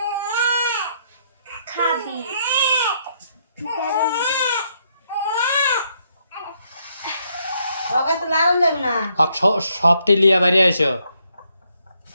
খাবি ওকে তো লাগান যাবে না আর সবটি লিয়া বাইরে আইসো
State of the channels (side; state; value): both; inverted; correlation -0.73